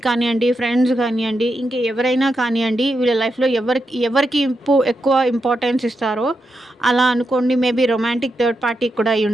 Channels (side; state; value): both; normal; correlation 0.85